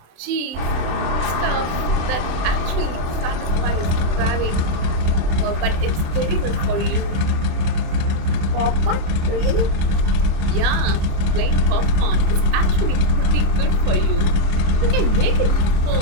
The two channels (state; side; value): late; left; 27 ms